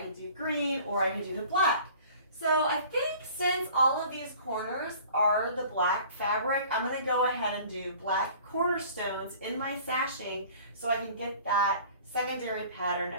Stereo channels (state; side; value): inverted; both; correlation -0.48